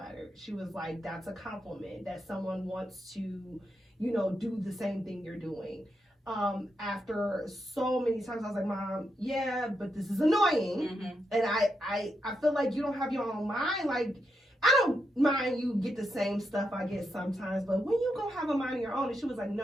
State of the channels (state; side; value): normal; both; correlation 0.83